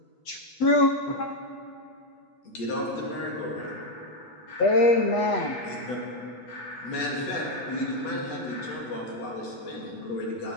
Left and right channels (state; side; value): late; right; 8.2 ms